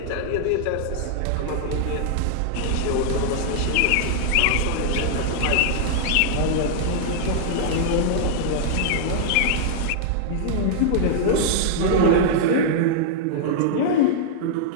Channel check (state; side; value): different; both; correlation -0.01